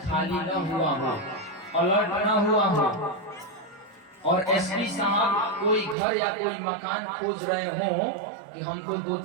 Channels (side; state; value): left; drops out; at 6.0 s